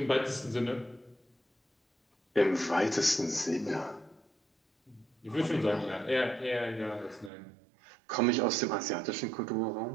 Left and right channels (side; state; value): left; drops out; at 7.3 s